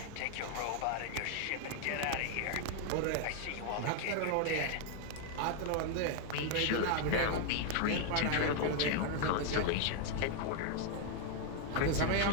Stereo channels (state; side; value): different; both; correlation 0.00